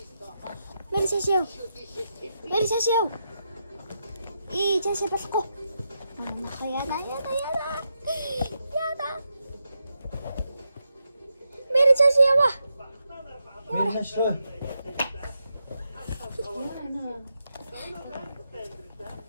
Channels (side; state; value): both; inverted; correlation -0.85